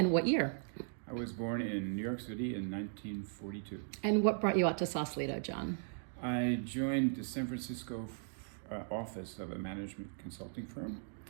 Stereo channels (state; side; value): silent; left; digital silence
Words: what year? I was born in New York City in 1942. And what brought you out to Sausalito, John? I joined the San Francisco office of a management consulting firm